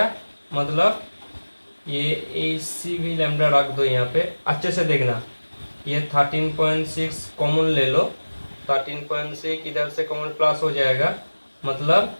मतलब ये AC भी लैम्डा रख दो यहाँ पे, अच्छे से देखना। ये 13.6 कॉमन ले लो, 13.6 इधर से कॉमन प्लस हो जाएगा, मतलब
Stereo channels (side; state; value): both; inverted; correlation -1.00